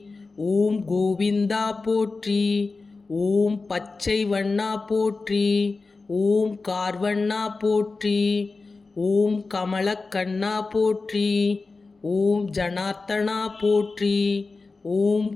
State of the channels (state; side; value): quieter; right; 3.9 dB